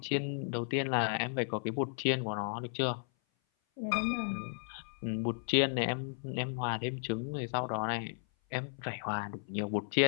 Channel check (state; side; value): silent; right; 55 dB below the other